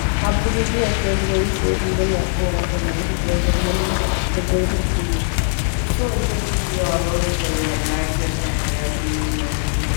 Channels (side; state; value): right; silent; 66 dB below the other